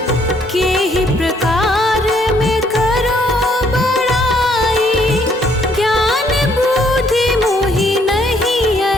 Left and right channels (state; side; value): normal; both; correlation 0.67